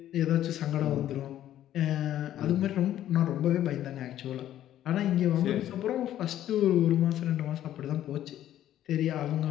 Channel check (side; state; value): right; quieter; 12.2 dB